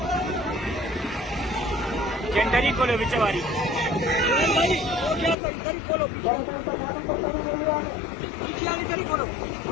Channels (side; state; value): right; drops out; at 5.4 s